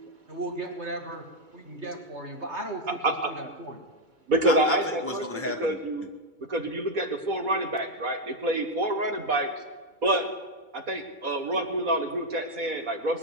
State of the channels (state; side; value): late; left; 2.3 ms